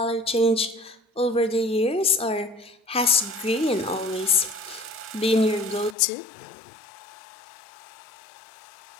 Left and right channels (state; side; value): drops out; right; at 6.0 s